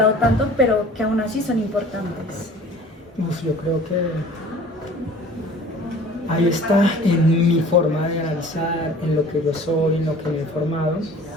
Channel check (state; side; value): normal; both; correlation 0.46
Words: tanto, pero que aún así son importantes? Yo creo que ahí está en mi forma de analizar, en lo que yo soy, en lo que me he formado,